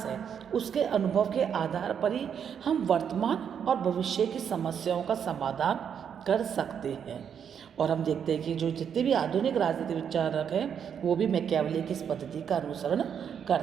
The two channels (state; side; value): quieter; left; 7.9 dB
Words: है, उसके अनुभव के आधार पर ही हम वर्तमान और भविष्य की समस्याओं का समाधान कर सकते हैं। और हम देखते हैं कि जो जितने भी आधुनिक राजनीतिक विचारक हैं वो भी मैकियावली की इस पद्धति का अनुसरण